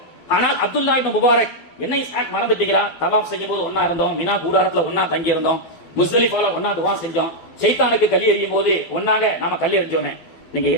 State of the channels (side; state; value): right; late; 12 ms